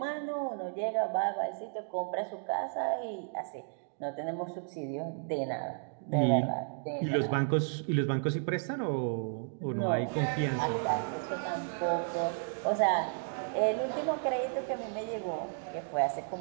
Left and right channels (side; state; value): left; silent; digital silence